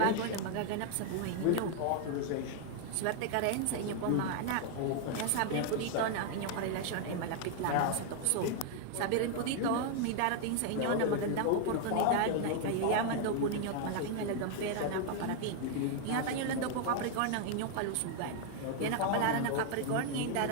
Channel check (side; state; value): both; different; correlation 0.00